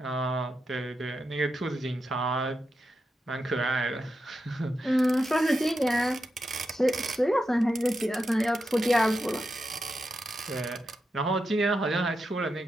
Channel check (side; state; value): both; normal; correlation 0.88